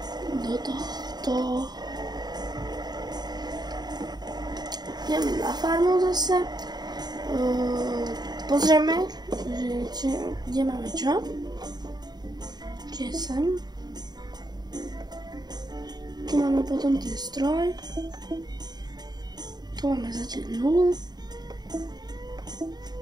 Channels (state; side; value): late; left; 0.20 ms